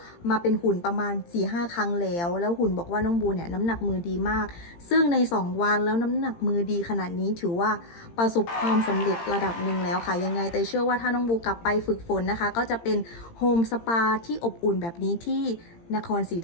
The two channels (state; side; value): late; right; 18 ms